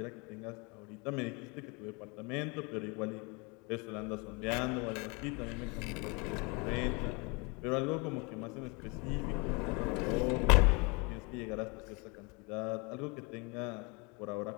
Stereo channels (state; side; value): quieter; right; 29.9 dB